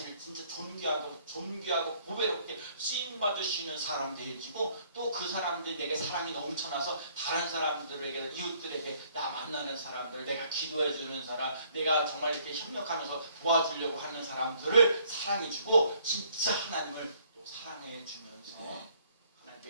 진짜 존귀하고 보배롭게 쓰임 사랑받을 수 있는 사람 되어지고 또 그 사람들이 내게 사랑이 넘쳐나서 다른 사람들에게 이웃들에게 나 만나는 사람들 내가 기도해 주는 사람 내가 정말 이렇게 협력하면서 도와주려고 하는 사람들을 사랑해주고 진짜 하나님을 또 사랑해 주면서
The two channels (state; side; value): inverted; both; correlation -0.63